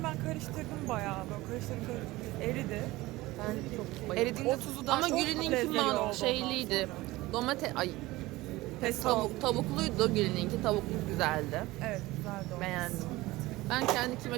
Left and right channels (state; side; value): quieter; left; 19.2 dB